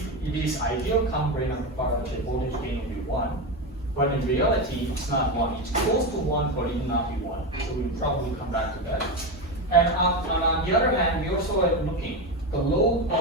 it is ideal common drain amplifier, the voltage gain will be 1. But in reality, it's not 1. It's close to 1, but it will not be 1. So we'll probably come back to that. And on the other hand, we also are looking. The load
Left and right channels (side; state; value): both; normal; correlation 0.15